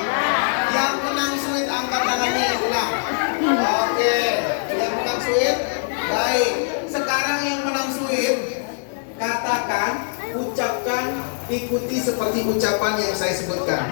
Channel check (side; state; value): right; silent; digital silence